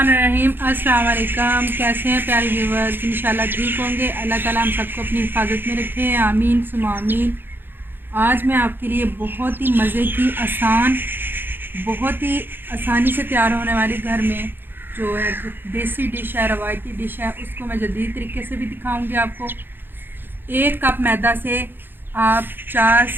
अस्सलाम वालेकुम। कैसे हैं प्यारे व्यूवर्स? इंशाल्लाह ठीक होंगे। अल्लाह ताला हम सबको अपनी हिफाजत में रखे। आमीन सुमा आमीन। आज मैं आपके लिए बहुत ही मज़े की बहुत ही आसानी से तैयार होने वाली घर में जो है देसी डिश है, रवायती डिश है, उसको मैं जदीद तरीके से भी दिखाऊंगी आपको। 1 कप मैदा से आप 4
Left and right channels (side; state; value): left; late; 0.099 ms